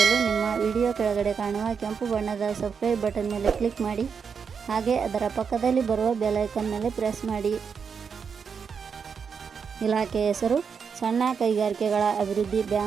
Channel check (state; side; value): quieter; left; 6.2 dB